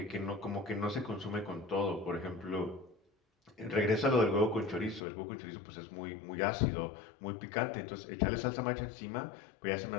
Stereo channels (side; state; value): right; drops out; at 5.1 s